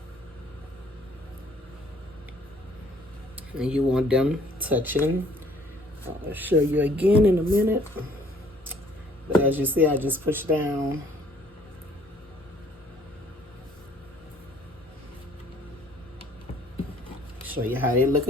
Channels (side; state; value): both; normal; correlation 0.59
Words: And you want them touching. I'll show you again in a minute. But as you see, I just push down show you how they look